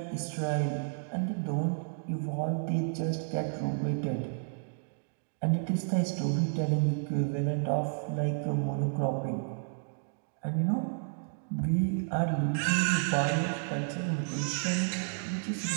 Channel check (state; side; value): silent; left; digital silence